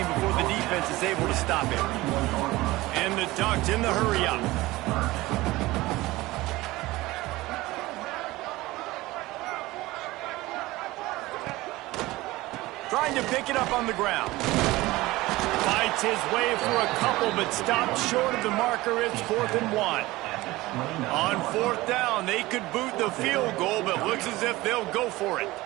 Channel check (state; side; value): quieter; left; 19.2 dB